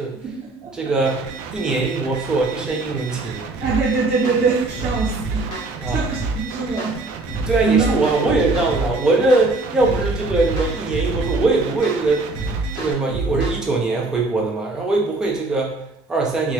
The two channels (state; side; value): quieter; left; 3.1 dB